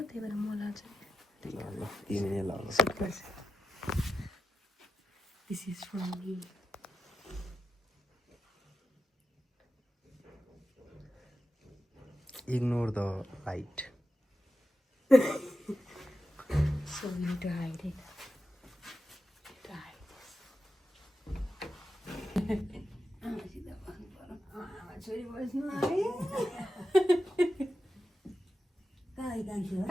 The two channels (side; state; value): both; normal; correlation 0.89